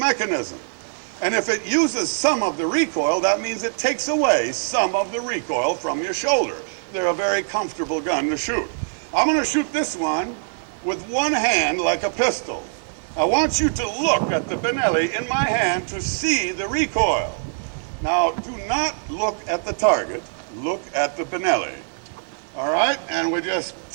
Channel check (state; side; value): silent; left; digital silence